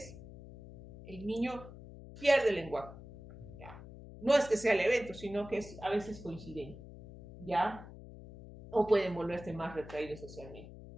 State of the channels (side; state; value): left; noise; hum, 15 dB below the sound